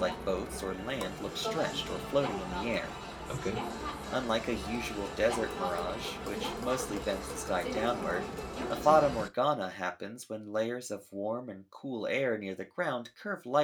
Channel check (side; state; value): both; identical; correlation 1.00